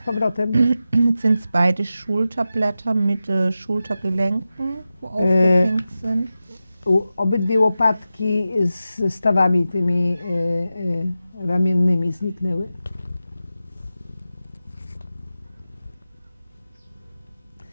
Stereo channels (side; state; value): both; inverted; correlation -0.92